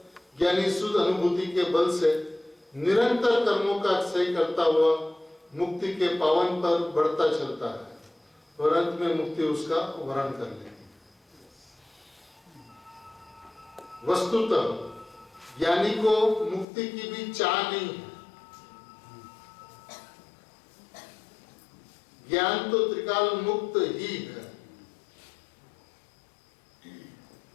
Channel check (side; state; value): right; drops out; at 16.7 s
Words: ज्ञानी शुद्ध अनुभूति के बल से निरंतर कर्मों का क्षय करता हुआ मुक्ति के पावन पर बढ़ता चलता है और अंत में मुक्ति उसका वरण कर लेगी। वस्तुतः ज्ञानी को मुक्ति की भी चाह नहीं है। ज्ञान तो त्रिकाल मुक्त ही है।